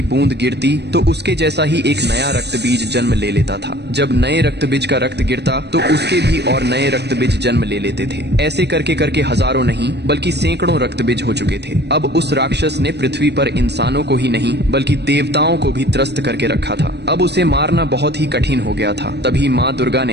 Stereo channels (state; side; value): late; left; 0.49 ms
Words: बूंद गिरती तो उसके जैसा ही एक नया रक्तबीज जन्म ले लेता था। जब नए रक्तबीज का रक्त गिरता तो उसके भी और नए रक्तबीज जन्म ले लेते थे। ऐसे करके करके हजारों नहीं बल्कि सैकड़ों रक्तबीज हो चुके थे। अब उस राक्षस ने पृथ्वी पर इंसानों को ही नहीं बल्कि देवताओं को भी त्रस्त करके रखा था। अब उसे मारना बहुत ही कठिन हो गया था। तभी माँ दुर्गा